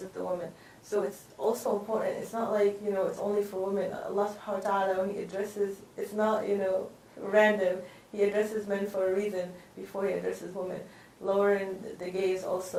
the women. So it's also important. It's not like, you know, it's only for women. Allah subhanahu wa ta'ala, when He addresses, it's not, you know, random. He addresses men for a reason before He addresses women. Lowering the gaze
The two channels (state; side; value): identical; both; correlation 1.00